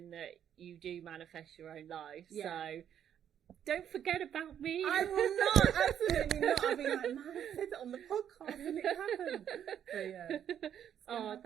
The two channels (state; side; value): quieter; left; 9.5 dB